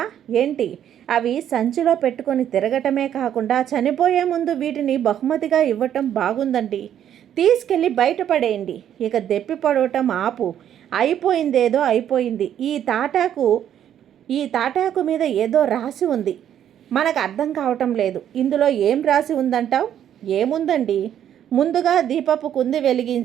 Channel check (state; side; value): quieter; left; 10.2 dB